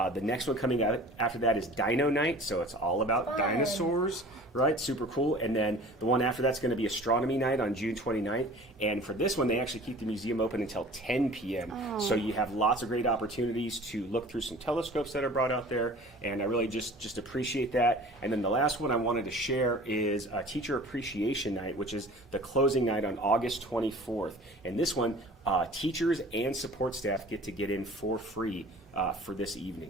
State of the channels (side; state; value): both; normal; correlation 0.44